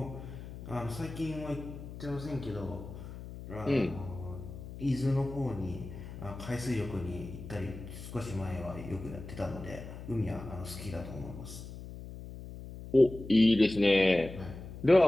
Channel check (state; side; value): noise; left; hum, 12 dB below the sound